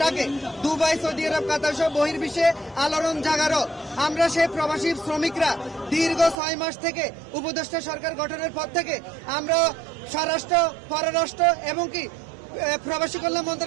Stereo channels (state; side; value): drops out; left; at 6.4 s